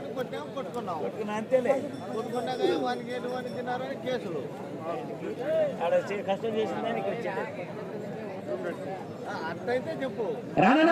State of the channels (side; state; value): both; identical; correlation 1.00